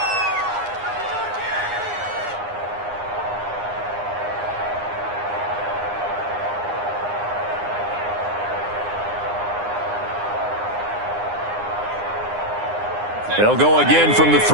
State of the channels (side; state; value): left; late; 9.8 ms